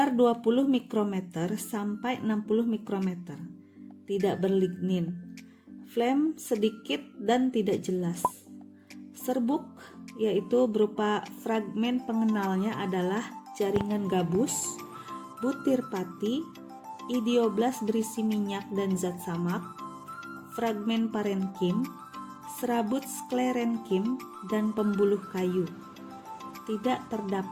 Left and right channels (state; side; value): identical; both; correlation 1.00